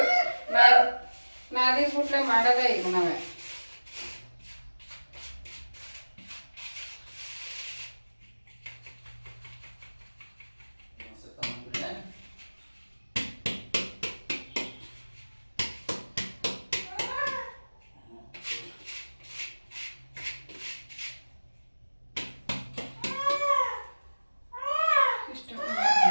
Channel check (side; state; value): both; inverted; correlation -1.00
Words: ನಾದಿಸ್ಬಿಟ್ಲೆ ಮಾಡೋದೇ ಈಗ ನಾವೇ.